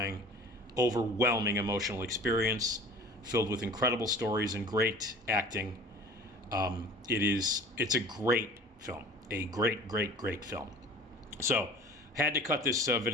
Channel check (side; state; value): both; normal; correlation 0.43